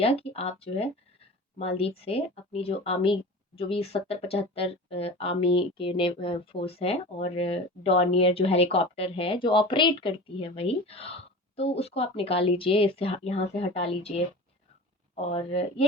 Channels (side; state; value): both; normal; correlation 0.35